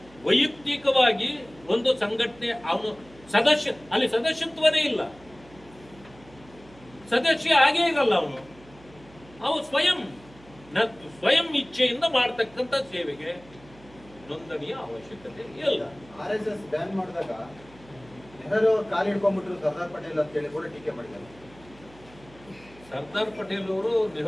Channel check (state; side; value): noise; right; hum, 24 dB below the sound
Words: ವೈಯಕ್ತಿಕವಾಗಿ ಒಂದು ಸಂಘಟನೆ, ಅವನು ಸದಸ್ಯ, ಅಲ್ಲಿ ಸದಸ್ಯತ್ವನೇ ಇಲ್ಲ, ಸದಸ್ಯ ಆಗೇ ಇರಲ್ಲ ಅವನು ಸ್ವಯಂ ಇಚ್ಛೆಯಿಂದ ಮಾಡ್ತಕ್ಕಂಥ ಸೇವೆಗೆ ನೋಂದಣಿಯ ಅವಶ್ಯಕತೆ ಇಲ್ಲ. RSS ಬ್ಯಾನ್ ಮಾಡಿದಾಗ ನೆಹರು ಕಾಲು ಹಿಡ್ಕೊಂಡ್ಬಿಟ್ರು ಸರ್ದಾರ್ ಪಟೇಲ್ ಅಂತ ಹೇಳಿ ಕೂಡ ಟೀಕೆ ಮಾಡಿದ್ದಾರೆ. ಸರ್ದಾರ್ ಪಟೇಲ್ ಅವರು